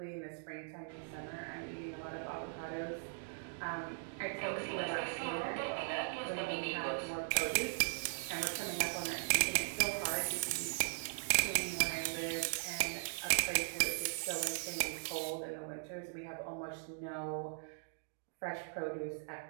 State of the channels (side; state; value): left; silent; digital silence